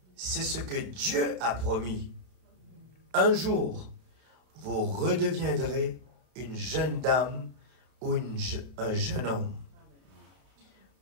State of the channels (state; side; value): late; left; 32 ms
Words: C'est ce que Dieu a promis. Un jour, vous redeviendrez une jeune dame ou un jeune homme